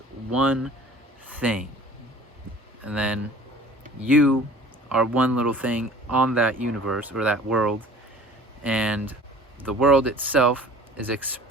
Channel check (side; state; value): both; normal; correlation 0.46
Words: one thing. And then you are one little thing on that universe or that world, and the world itself is